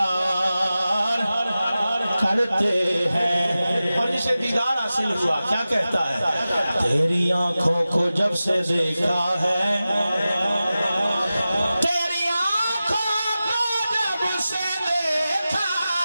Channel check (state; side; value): inverted; both; correlation -0.95